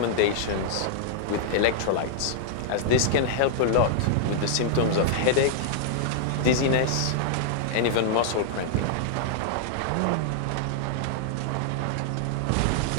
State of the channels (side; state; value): both; different; correlation -0.01